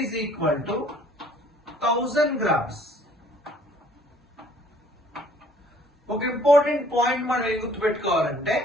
is equal to 1000 grams. ఒక important point మనం ఏం గుర్తుపెట్టుకోవాలంటే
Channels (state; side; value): normal; both; correlation 0.58